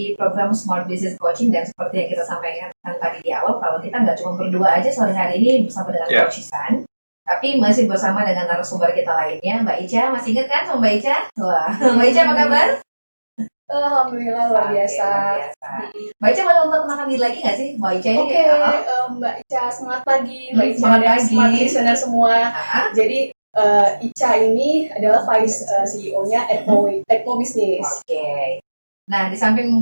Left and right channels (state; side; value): inverted; both; correlation -1.00